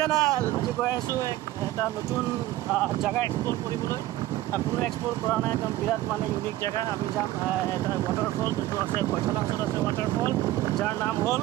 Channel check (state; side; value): quieter; left; 15.8 dB